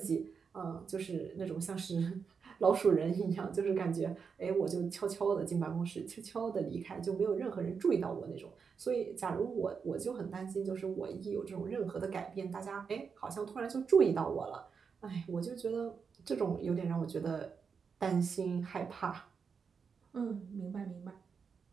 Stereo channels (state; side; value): quieter; left; 5.9 dB